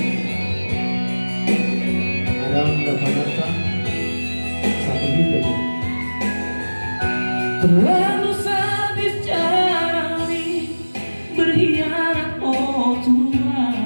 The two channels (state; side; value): inverted; both; correlation -1.00